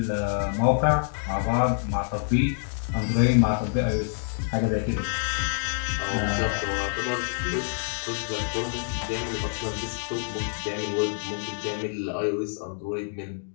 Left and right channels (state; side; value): silent; right; digital silence